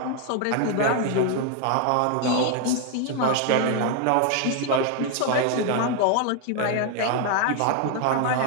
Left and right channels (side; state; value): both; different; correlation 0.01